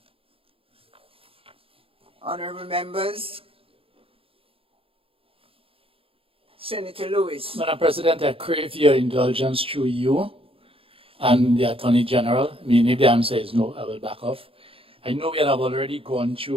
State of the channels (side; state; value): left; late; 0.27 ms